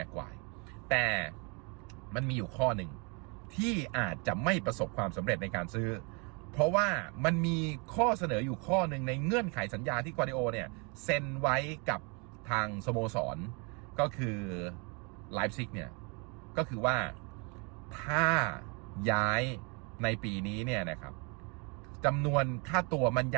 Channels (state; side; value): quieter; left; 32.6 dB